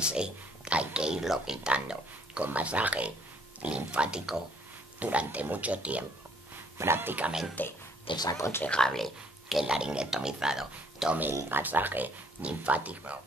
hay que irlo quitando con masaje linfático durante mucho tiempo. Prácticamente es aconsejable que el laringotomizado tome el masaje linfático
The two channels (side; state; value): both; normal; correlation 0.64